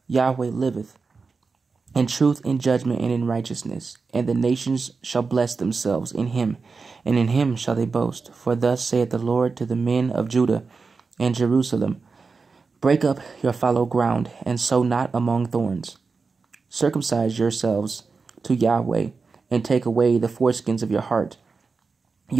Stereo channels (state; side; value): quieter; left; 4.6 dB